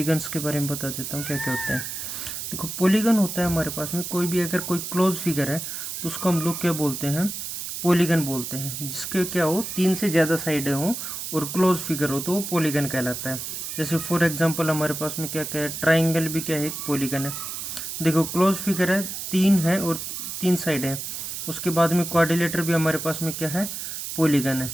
के बारे में बता देता हूँ क्या क्या होते हैं। देखो, पॉलीगन होता है हमारे पास में कोई भी अगर कोई क्लोज फिगर है तो उसको हम लोग क्या बोलते हैं, पॉलीगन बोलते हैं। जिसके क्या हो, 3 से ज़्यादा साइडें हों और क्लोज फिगर हो तो वो पॉलीगन कहलाता है। जैसे फॉर एग्जाम्पल हमारे पास में क्या क्या है, ट्राइंगल भी क्या है, एक पॉलीगन है। देखो, क्लोज फिगर है, 3 है और 3 साइड है। उसके बाद में क्वाड्रिलेटर भी हमारे पास में क्या है, पॉलीगन है।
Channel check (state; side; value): noise; right; hiss, 6 dB below the sound